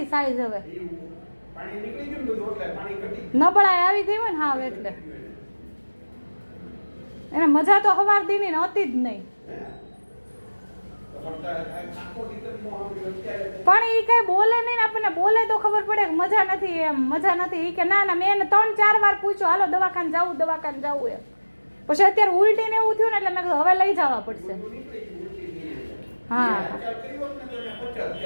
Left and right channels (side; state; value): both; inverted; correlation -1.00